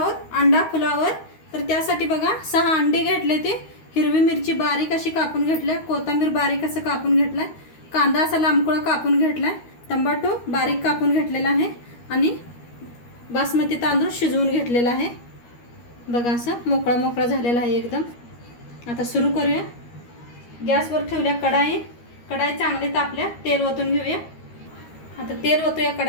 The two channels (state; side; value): late; right; 13 ms